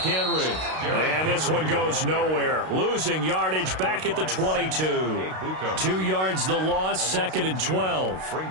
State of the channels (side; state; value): left; late; 32 ms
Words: And this one goes nowhere. Losing yardage back at the 22. 2 yards the loss, 2nd and 12.